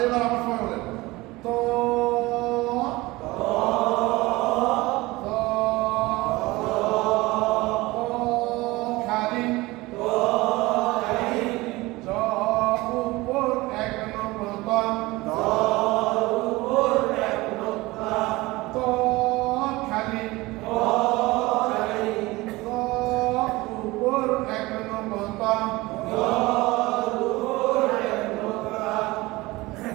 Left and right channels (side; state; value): left; quieter; 20.8 dB